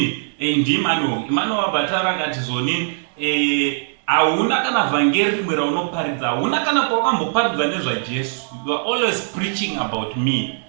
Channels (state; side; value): silent; left; digital silence